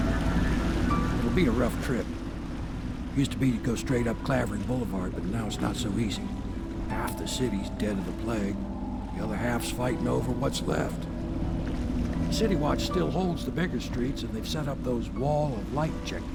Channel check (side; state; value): both; identical; correlation 1.00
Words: Be a rough trip. Used to be to go straight up Clavering Boulevard, but now it's not so easy. Half the city's dead of the plague. The other half's fighting over what's left. City Watch still holds the bigger streets, and they've set up those wall of light